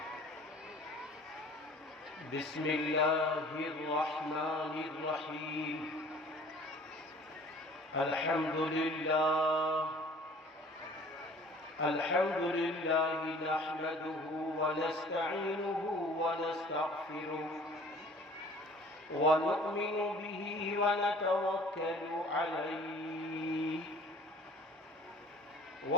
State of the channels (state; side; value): normal; both; correlation 0.49